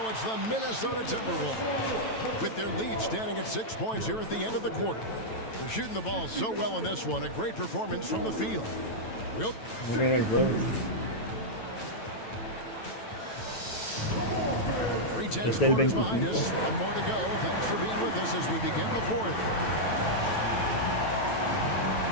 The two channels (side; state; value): right; late; 9.1 ms